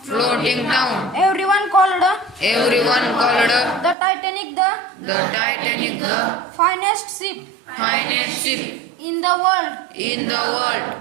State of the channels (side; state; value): left; drops out; at 4.0 s